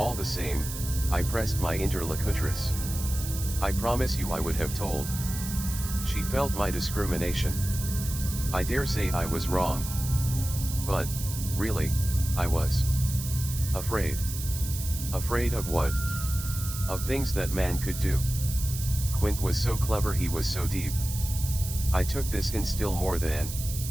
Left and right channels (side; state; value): right; noise; hiss, 8 dB below the sound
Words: the same, I pressed my interlocutress. I promise you I would have told. She felt my discrimination. I dare say I was wrong. But, really, I was afraid. Afraid of what? Of things that man could do. Quint was so clever, he was so deep. I took this in still more